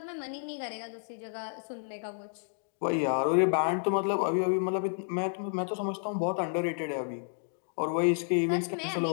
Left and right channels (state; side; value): silent; right; digital silence